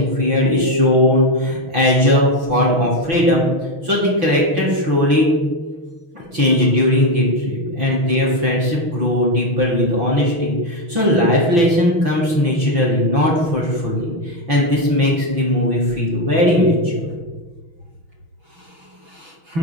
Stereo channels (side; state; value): left; late; 5.9 ms